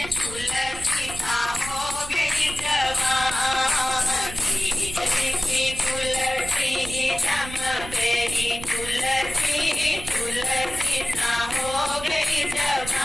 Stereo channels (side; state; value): right; noise; rumble, 12 dB below the sound